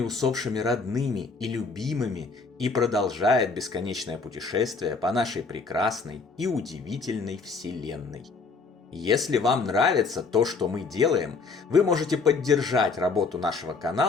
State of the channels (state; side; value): quieter; right; 4.4 dB